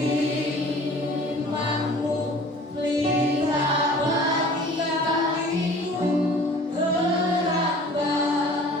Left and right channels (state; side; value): normal; both; correlation 0.47